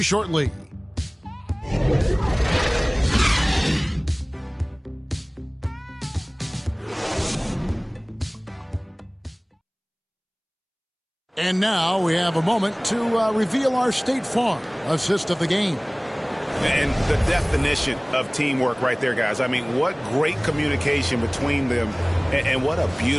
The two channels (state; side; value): identical; both; correlation 1.00